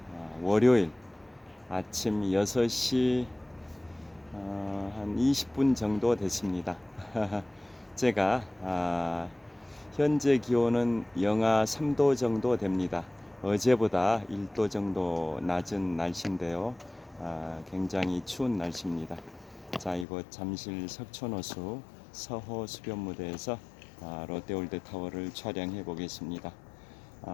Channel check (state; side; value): drops out; right; at 20.1 s